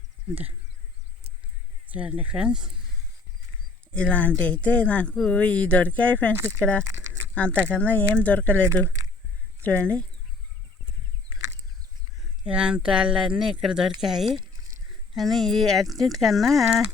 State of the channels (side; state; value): right; quieter; 3.6 dB